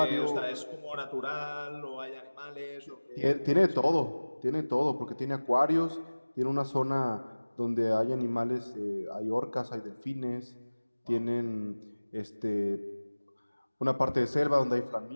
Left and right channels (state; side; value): inverted; both; correlation -1.00